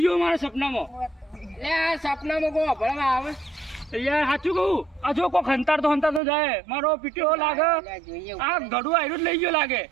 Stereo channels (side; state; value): left; drops out; at 6.2 s